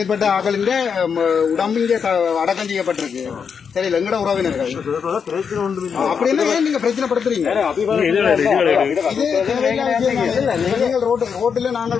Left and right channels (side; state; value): right; quieter; 6.5 dB